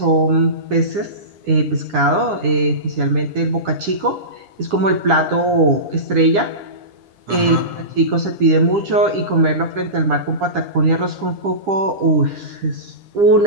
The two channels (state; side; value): late; left; 10 ms